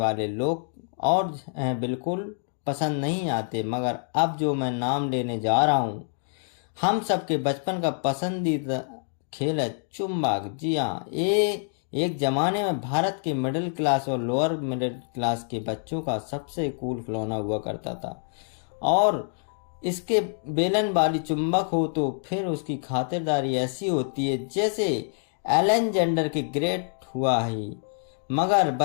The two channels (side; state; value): right; silent; digital silence